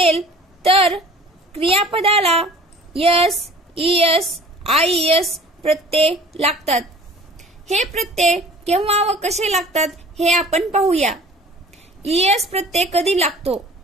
तर क्रियापदाला S, ES, IES प्रत्यय लागतात. हे प्रत्यय केव्हा व कसे लागतात हे आपण पाहूया. ES प्रत्यय कधी लागतो?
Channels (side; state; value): both; normal; correlation 0.46